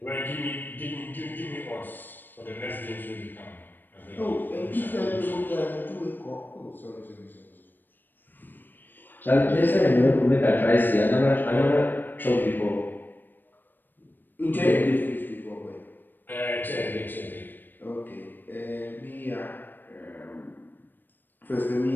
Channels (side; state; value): right; late; 0.092 ms